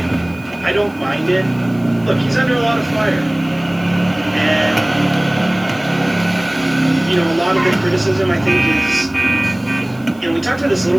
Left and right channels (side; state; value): right; noise; hiss, 28 dB below the sound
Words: don't mind it. Look, he's under a lot of fire. And, you know, a lot of the criticism, I think, is, you know, we talked about this a little